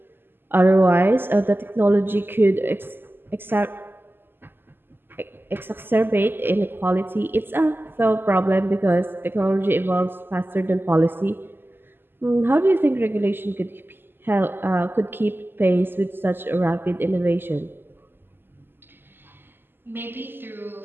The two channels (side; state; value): left; late; 0.098 ms